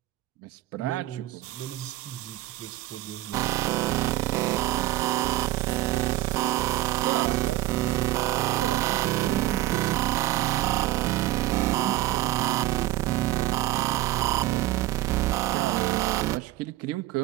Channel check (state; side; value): quieter; left; 15.7 dB